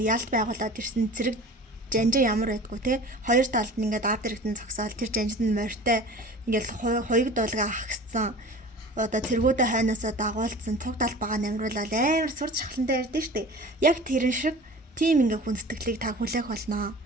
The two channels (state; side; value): normal; both; correlation 0.40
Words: ялт байгуулад ирсэн зэрэг жанжин ямар байдгүй те хоёр талд нь ингээд ард иргэдэн зогсоол тэр жанжинд нь морьтой ингээд хоёуг дуулга ахсан одоо цэргүүдэ хайнаасаа дагуулсан цуг талбагаа намруулаад амар сурч шахлантай ярьдэн штэ яг тэрэн шиг тийм ингээ хүндэтгэлийг та хүлээх болно.